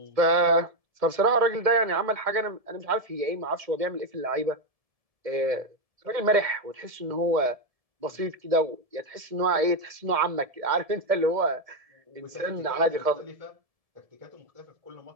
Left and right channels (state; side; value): late; left; 1.7 ms